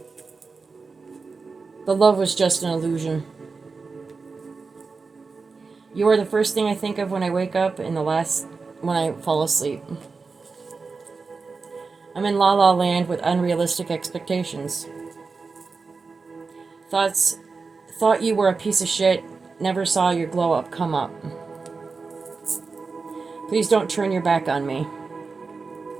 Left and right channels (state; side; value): quieter; left; 4.5 dB